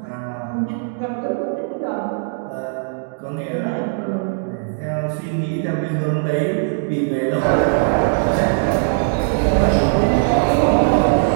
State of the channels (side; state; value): left; silent; digital silence